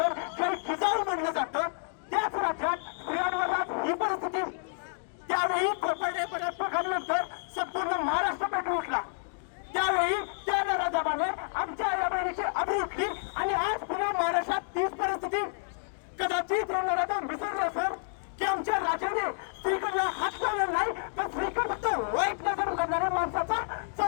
जय जिजाऊ म्हणलं जातं, त्याच राज्यात स्त्रियांवर आज ही परिस्थिती. त्यावेळी कोपर्डे पराटपकांनंतर संपूर्ण महाराष्ट्र पेटून उठला. त्यावेळी त्या नराधमाने आमच्या आई बहिणीची अबू उठली आणि आज पुन्हा महाराष्ट्रात तीच परिस्थिती. कदाचित हे नराधम विसरले असेल की आमच्या राजाने स्त्रीकडला हात लावला नाही, तर स्त्रीकडे फक्त वाईट नजर करणाऱ्या माणसाचा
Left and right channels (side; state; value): right; silent; digital silence